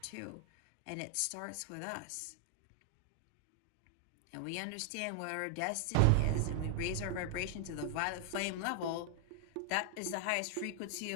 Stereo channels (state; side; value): different; both; correlation 0.00